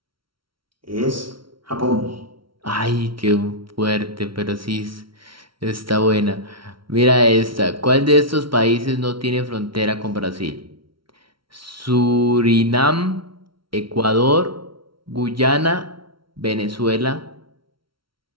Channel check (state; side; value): late; left; 0.74 ms